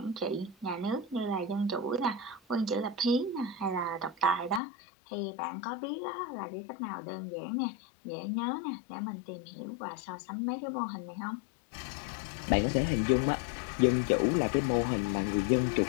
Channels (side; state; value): right; drops out; at 4.6 s